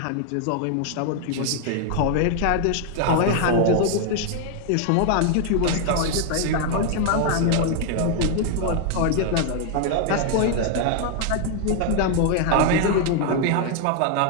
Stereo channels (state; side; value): different; both; correlation 0.00